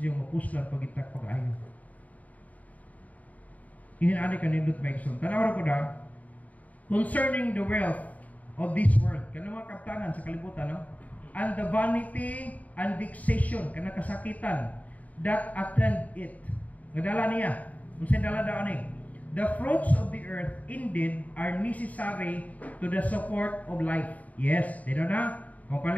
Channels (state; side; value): late; right; 0.072 ms